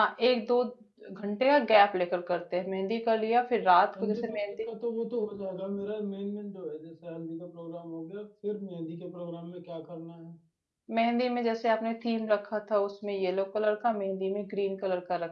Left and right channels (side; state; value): both; identical; correlation 1.00